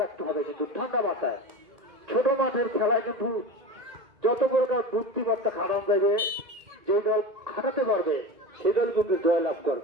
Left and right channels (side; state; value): left; late; 1.9 ms